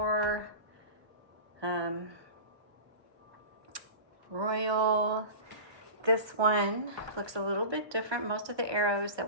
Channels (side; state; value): left; late; 1.2 ms